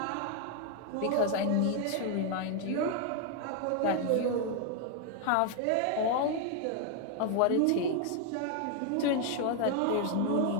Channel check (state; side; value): different; both; correlation 0.00